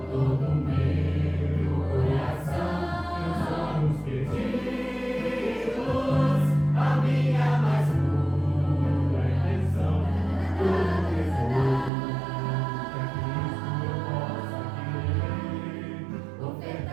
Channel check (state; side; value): drops out; left; at 11.9 s